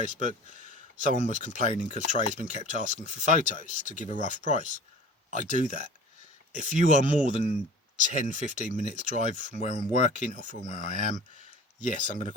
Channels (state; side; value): normal; both; correlation 0.42